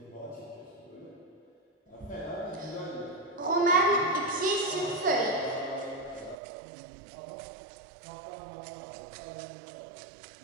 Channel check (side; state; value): left; drops out; at 6.4 s